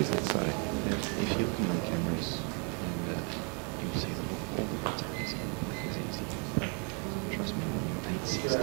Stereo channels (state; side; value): quieter; left; 36.3 dB